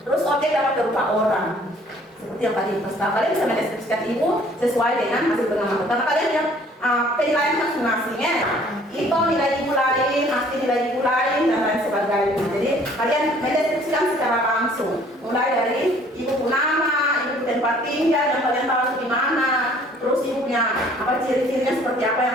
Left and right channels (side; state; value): both; normal; correlation 0.56